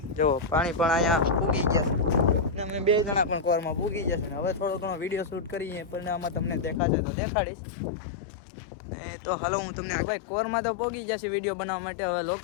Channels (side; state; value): right; drops out; at 6.8 s